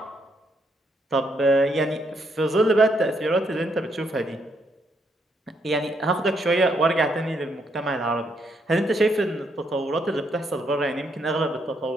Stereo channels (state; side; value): normal; both; correlation 0.75